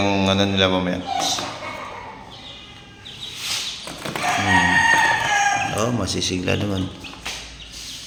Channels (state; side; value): identical; both; correlation 1.00